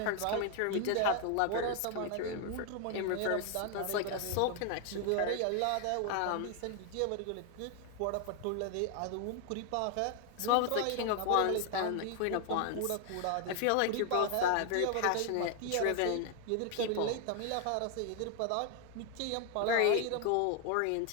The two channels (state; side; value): different; both; correlation 0.00